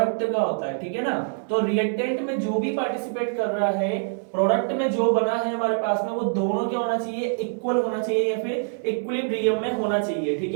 का होता है। ठीक है ना? तो रिएक्टेंट में जो भी पार्टिसिपेट कर रहा है, प्रोडक्ट में जो बना है हमारे पास में, वो दोनों क्या होना चाहिए? इक्वल होना चाहिए या फिर इक्विलिब्रियम में होना चाहिए। ठीक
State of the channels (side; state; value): left; silent; digital silence